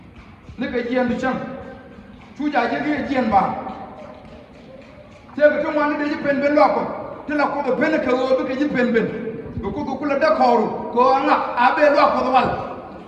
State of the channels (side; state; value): both; identical; correlation 1.00